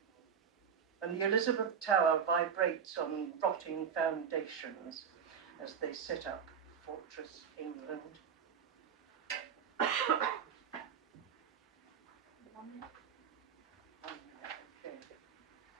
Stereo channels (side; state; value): left; quieter; 7.3 dB